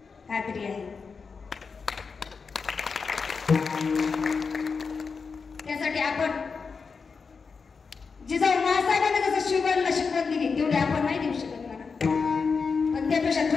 खात्री आहे. त्यासाठी आपण जिजाऊ महासाहेबांनी जसं शिवबाईला शिकवण दिली तेवढी आपण नाही देऊ शकत मला, पण त्यापेक्षा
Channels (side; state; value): right; quieter; 5.1 dB